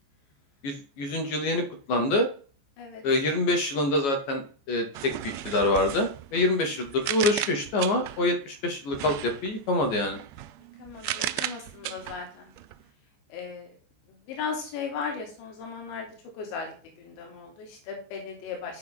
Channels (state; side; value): late; right; 14 ms